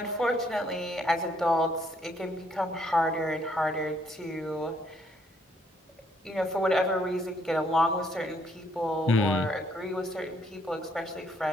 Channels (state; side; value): normal; both; correlation 0.69